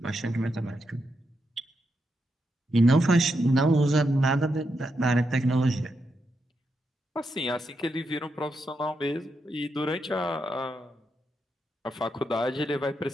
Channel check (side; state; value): both; normal; correlation 0.83